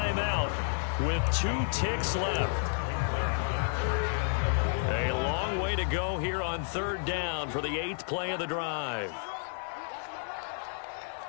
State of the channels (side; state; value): right; silent; 57 dB below the other